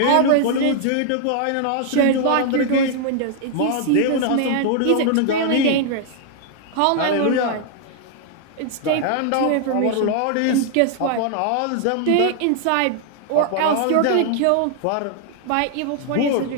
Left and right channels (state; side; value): different; both; correlation 0.00